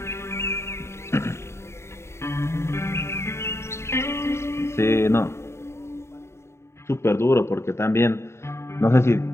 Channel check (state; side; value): late; right; 0.13 ms